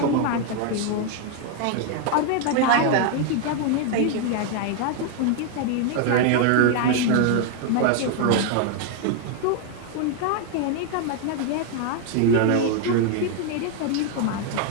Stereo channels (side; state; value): both; different; correlation 0.01